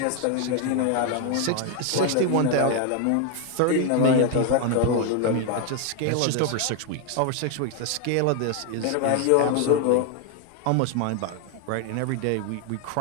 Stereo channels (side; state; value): both; different; correlation 0.01